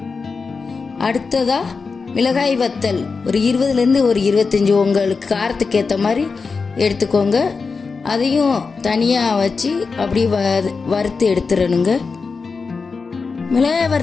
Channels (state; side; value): quieter; right; 4.7 dB